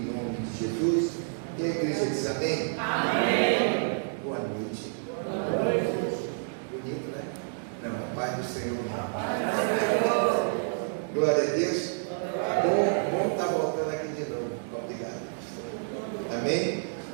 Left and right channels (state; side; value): silent; left; digital silence